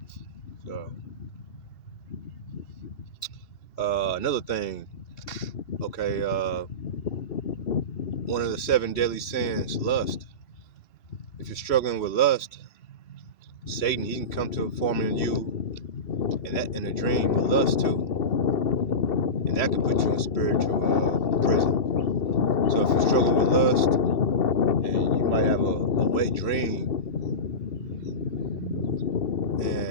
So, another thing, one of the seven deadly sins, lust. If you're struggling with lust, Satan, he can come to a form in you in a dream with lust too. And that can put you in spiritual prison. So if you're struggling with lust and you might have a wet dream,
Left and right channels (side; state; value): right; late; 2.7 ms